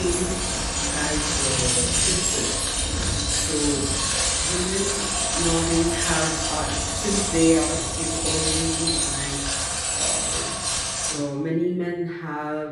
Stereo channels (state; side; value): identical; both; correlation 1.00